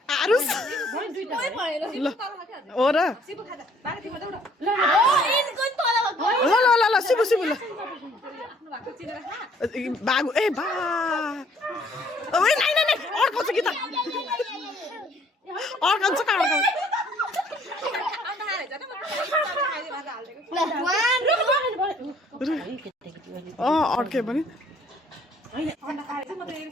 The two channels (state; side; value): normal; both; correlation 0.61